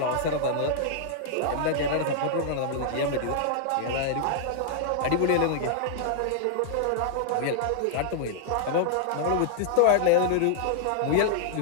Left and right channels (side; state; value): both; different; correlation -0.01